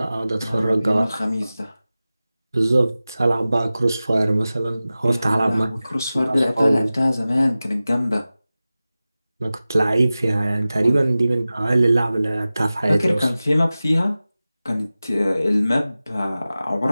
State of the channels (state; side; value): inverted; both; correlation -0.96